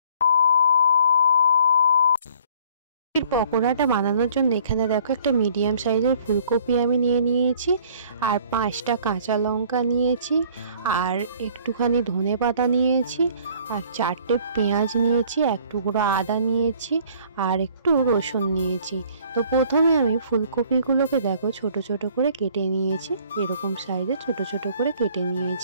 পকোড়াটা বানানোর জন্য এখানে দেখো একটা মিডিয়াম সাইজের ফুলকপি আমি নিয়েছি, আর 5টা কাঁচা লঙ্কা নিয়েছি, আর একটুখানি ধনেপাতা নিয়েছি, আর 4টে পেঁয়াজ নিয়েছি, এক টুকরো আদা নিয়েছি, আর একটু রসুন নিয়েছি। তো প্রথমে আমি ফুলকপিগুলোকে দেখো ছোট ছোট করে কেটে নিয়েছি, এরকম সাইজে ছোট ছোট করে কেটে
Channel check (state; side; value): inverted; both; correlation -0.56